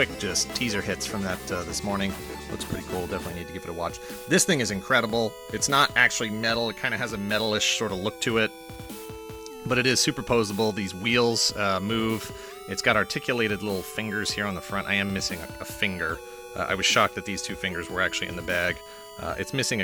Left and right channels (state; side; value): identical; both; correlation 1.00